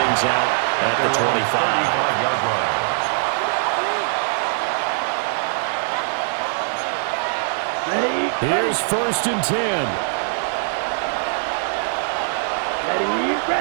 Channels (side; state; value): left; silent; 64 dB below the other